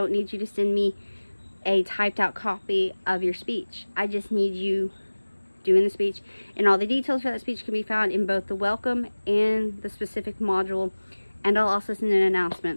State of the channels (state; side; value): inverted; both; correlation -1.00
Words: need you to send me a typed out copy of your speech. I just need you doing the speech, and all the details for that speech can be found in both the welcome and the specific module, and I'll also send an